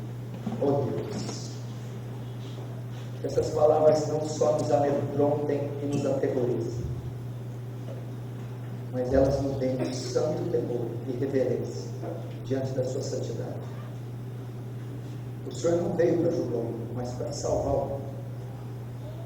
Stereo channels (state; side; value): identical; both; correlation 1.00